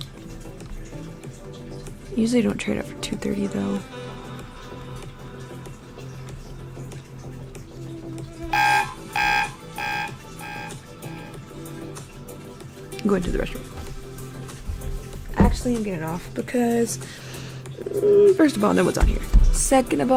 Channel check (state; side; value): identical; both; correlation 1.00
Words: Usually don't trade it for 230 though. I'm going to the restroom. Actually, I'm getting off because first of all, no one's on here. Second of